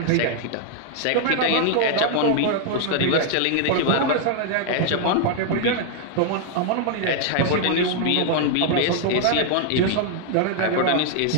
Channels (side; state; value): both; different; correlation 0.00